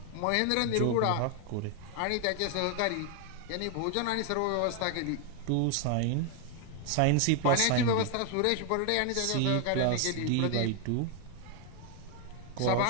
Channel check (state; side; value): different; both; correlation 0.00